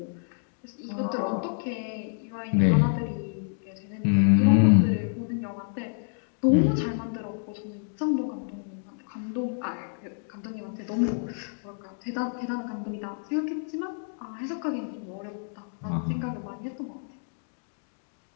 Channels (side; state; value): right; silent; digital silence